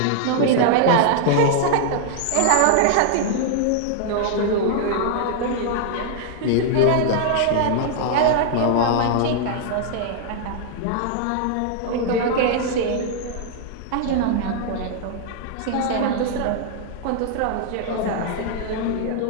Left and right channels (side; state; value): both; different; correlation -0.01